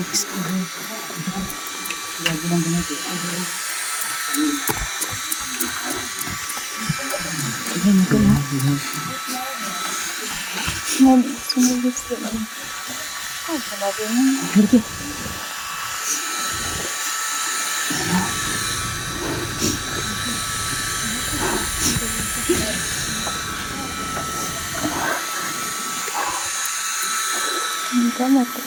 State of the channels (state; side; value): identical; both; correlation 1.00